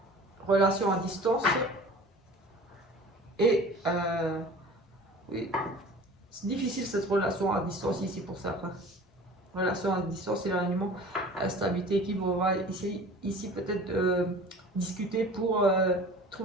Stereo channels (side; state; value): both; normal; correlation 0.43